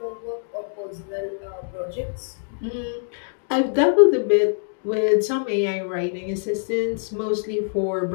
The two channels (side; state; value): right; silent; digital silence